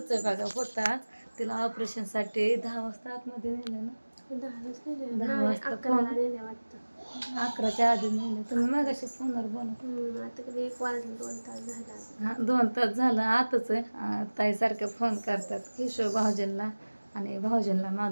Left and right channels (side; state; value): both; inverted; correlation -1.00